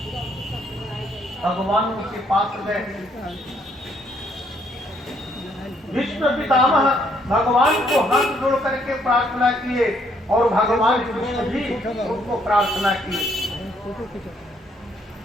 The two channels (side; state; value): both; normal; correlation 0.69